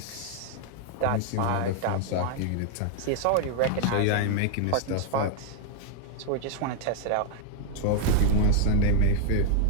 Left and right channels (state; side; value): different; both; correlation 0.00